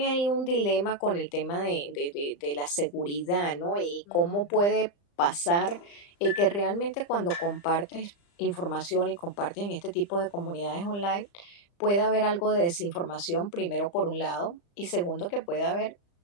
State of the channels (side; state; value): right; late; 35 ms